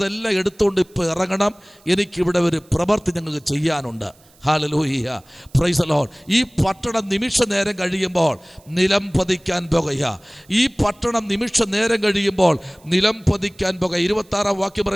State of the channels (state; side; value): noise; right; hiss, 30 dB below the sound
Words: എടുത്തുകൊണ്ട് ഇപ്പോൾ ഇറങ്ങണം. എനിക്കിവിടെ ഒരു പ്രവൃത്തി ഞങ്ങൾക്ക് ചെയ്യാനുണ്ട്. Hallelujah, praise the Lord. ഈ പട്ടണം നിമിഷ നേരം കഴിയുമ്പോൾ നിലം പതിക്കാൻ പോകുക. ഈ പട്ടണം നിമിഷ നേരം കഴിയുമ്പോൾ നിലം പതിക്കാൻ പോകുക. 26 വാക്യം